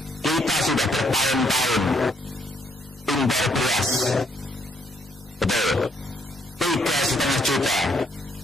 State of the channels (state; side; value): normal; both; correlation 0.70